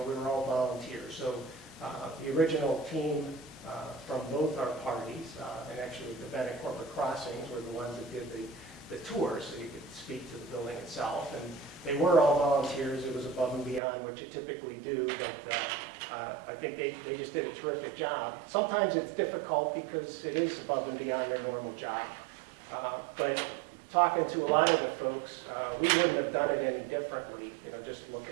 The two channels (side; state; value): left; drops out; at 13.8 s